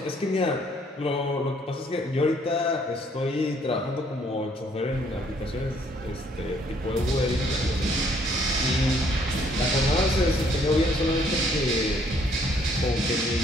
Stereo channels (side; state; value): both; normal; correlation 0.65